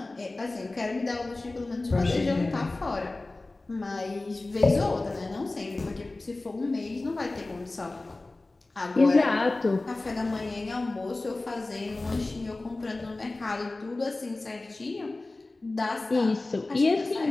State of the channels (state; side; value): quieter; right; 3.1 dB